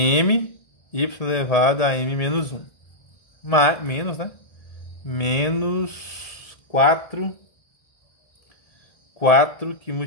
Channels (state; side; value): late; right; 1.7 ms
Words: y elevado a m menos 1. Menos, né? Menos 4 que